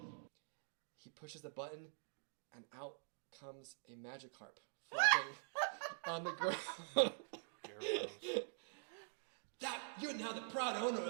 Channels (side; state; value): left; silent; digital silence